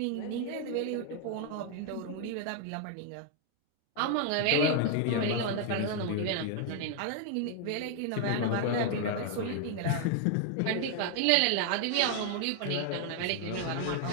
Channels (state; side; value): different; both; correlation 0.00